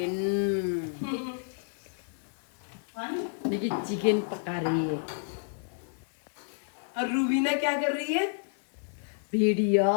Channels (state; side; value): silent; right; digital silence